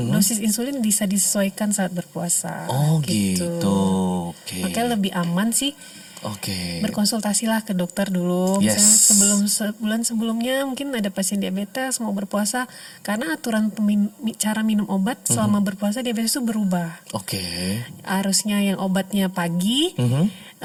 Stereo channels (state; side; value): identical; both; correlation 1.00